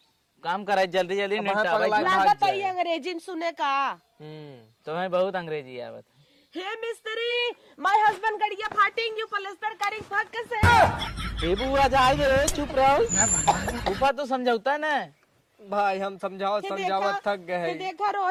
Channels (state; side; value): identical; both; correlation 1.00